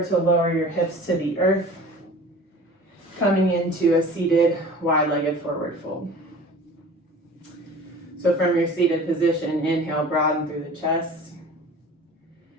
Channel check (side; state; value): both; normal; correlation 0.42